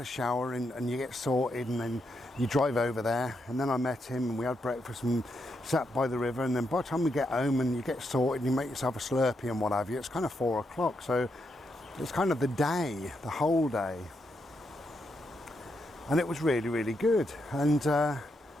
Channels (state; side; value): normal; both; correlation 0.81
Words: shower and you get sorted and then you drive over there, and then I met him and we had breakfast and sat by the river, and then by the time we get home and you get sorted and you make yourself a Slurpee and what have you, it's kind of 4 o'clock. So it's kind of the day, the whole day. And it was really, really good. And